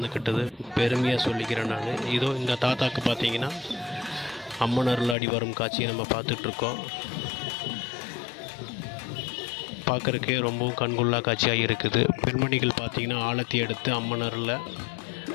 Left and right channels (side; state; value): right; drops out; at 5.2 s